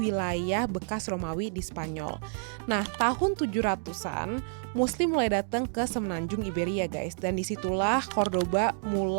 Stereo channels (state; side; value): silent; left; digital silence